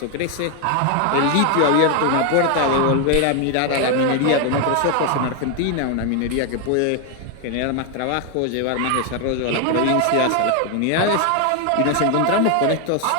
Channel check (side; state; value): both; different; correlation 0.01